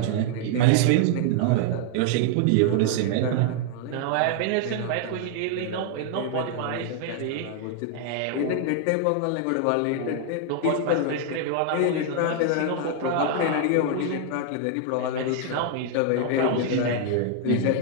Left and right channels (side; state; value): both; different; correlation 0.00